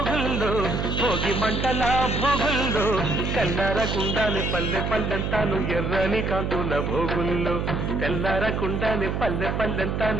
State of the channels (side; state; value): right; noise; hum, 1 dB below the sound